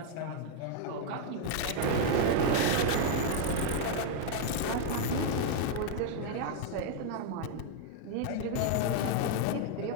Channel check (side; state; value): both; different; correlation 0.00